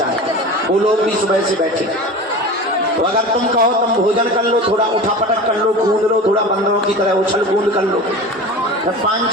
है। वो लोग भी सुबह से बैठे। तो अगर तुम कहो तुम भोजन कर लो, थोड़ा उठा पटक कर लो, कूद लो, थोड़ा बंदरों की तरह उछल कूद कर लो, फिर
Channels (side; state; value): both; normal; correlation 0.33